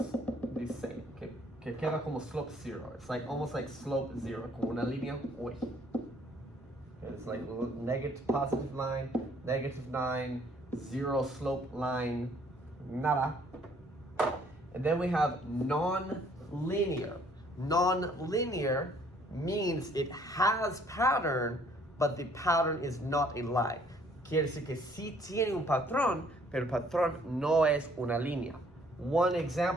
the same. Que queda como slope zero. It's like almost like slope zero. Como una línea. Uy. It's like negative positive line, negative 9, zero slope line, nada. And then we have non-linear. Non-linear means it has pattern, but the pattern is not a line. Quiere decir que sí tiene un patrón, pero el patrón no es una línea. One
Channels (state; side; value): normal; both; correlation 0.62